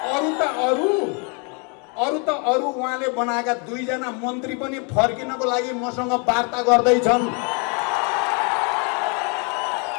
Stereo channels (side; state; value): right; quieter; 35.2 dB